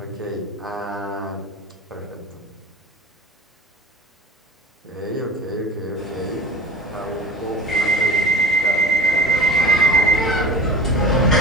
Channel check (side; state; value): both; normal; correlation 0.37